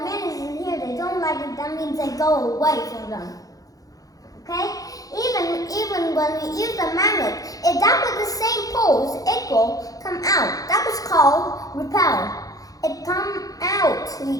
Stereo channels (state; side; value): late; right; 0.17 ms